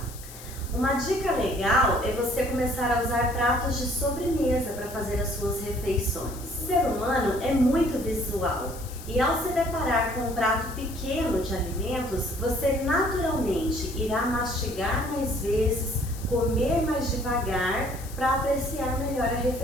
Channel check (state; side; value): noise; left; hiss, 16 dB below the sound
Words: Uma dica legal é você começar a usar pratos de sobremesa para fazer as suas refeições. O ser humano é muito visual e ao se deparar com um prato pequeno de alimentos, você naturalmente irá mastigar mais vezes, comer mais devagar para apreciar melhor a